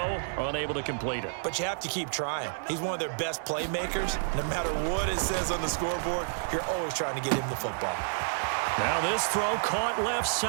unable to complete it. But you have to keep trying. He's one of their best playmakers. No matter what it says on the scoreboard, you're always trying to get him the football. Now this throw caught left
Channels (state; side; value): silent; left; 58 dB below the other